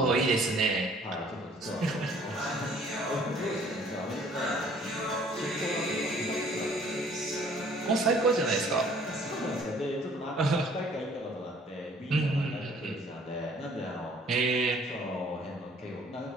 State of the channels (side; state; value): both; normal; correlation 0.56